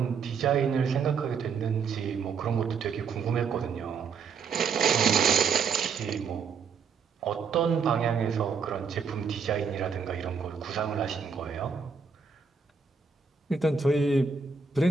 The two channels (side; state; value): left; quieter; 5.7 dB